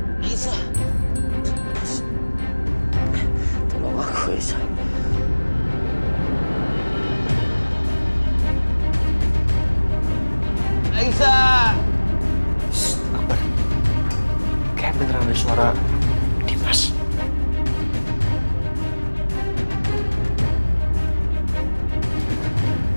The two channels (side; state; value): both; inverted; correlation -1.00